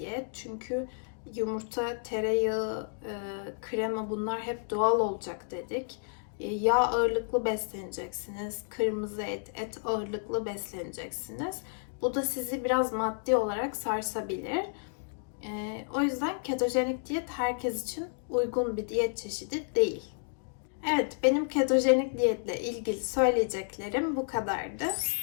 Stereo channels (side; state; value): right; silent; digital silence